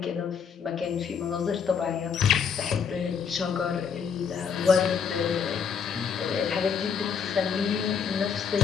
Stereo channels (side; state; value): right; quieter; 6.8 dB